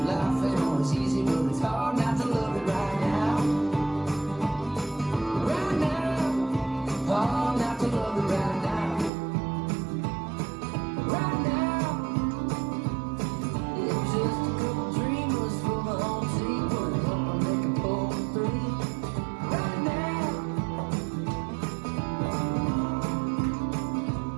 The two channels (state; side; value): drops out; left; at 9.1 s